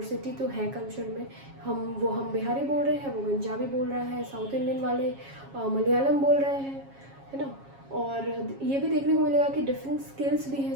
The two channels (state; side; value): late; left; 7.3 ms